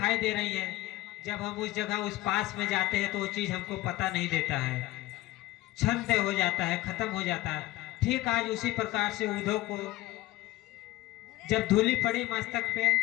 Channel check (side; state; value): right; quieter; 17.7 dB